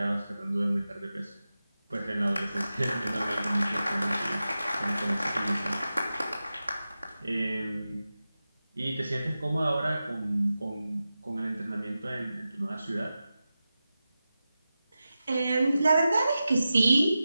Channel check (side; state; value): both; inverted; correlation -0.93